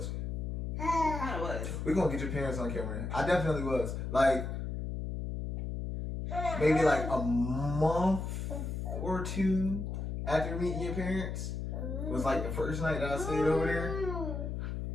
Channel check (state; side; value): noise; left; hum, 4 dB below the sound